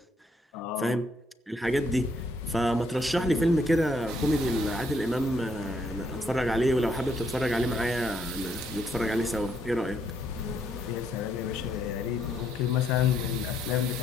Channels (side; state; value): both; normal; correlation 0.71